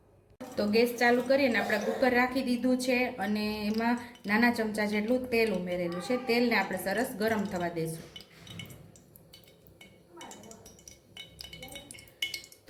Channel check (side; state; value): both; identical; correlation 1.00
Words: તો ગેસ ચાલુ કરીને આપણે કુકર રાખી દીધું છે અને એમાં નાના ચમચા જેટલું તેલ ઉમેરેલું છે. તેલને આપણે સરસ ગરમ થવા દઈશું.